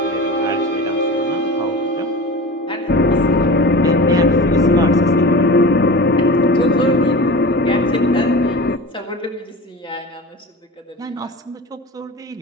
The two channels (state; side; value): normal; both; correlation 0.33